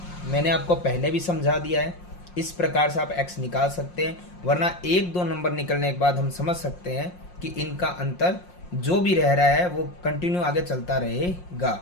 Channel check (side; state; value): right; late; 5.6 ms